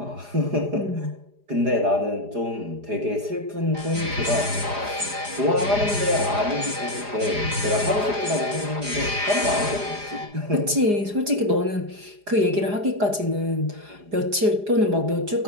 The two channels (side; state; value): left; late; 4.9 ms